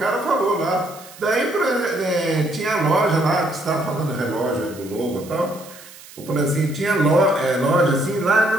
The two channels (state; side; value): noise; right; hiss, 19 dB below the sound